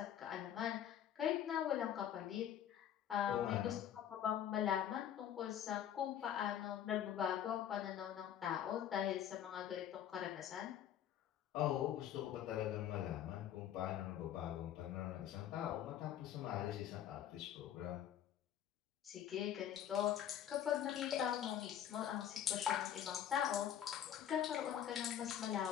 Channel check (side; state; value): right; quieter; 10.2 dB